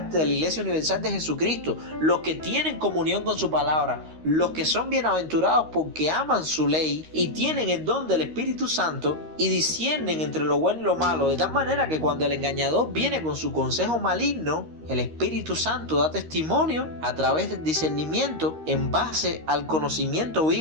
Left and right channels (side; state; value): left; late; 13 ms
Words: de la Iglesia Universal de Jesucristo, los que tienen comunión con su palabra, los que son bienaventurados porque aman su ley y tienen el don del Espíritu Santo y disciernen entre lo bueno y lo malo, de tal manera que cuando el engañador viene con su consejo maligno, el Espíritu Santo da testimonio a través del discernimiento en base al conocimiento